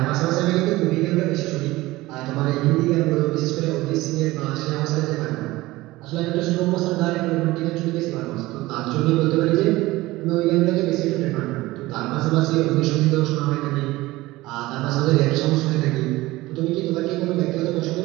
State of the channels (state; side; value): quieter; left; 18.9 dB